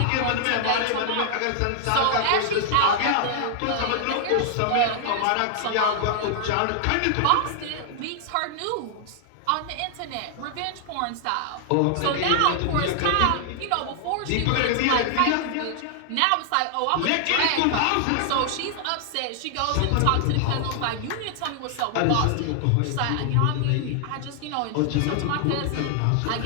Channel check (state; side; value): different; both; correlation 0.00